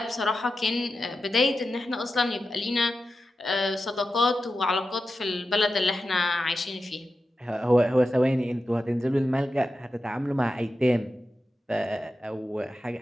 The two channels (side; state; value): both; normal; correlation 0.91